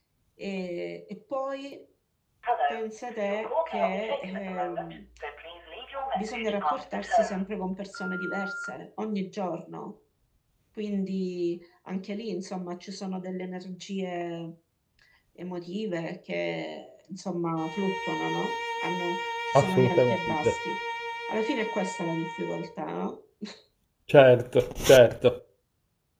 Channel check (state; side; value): identical; both; correlation 1.00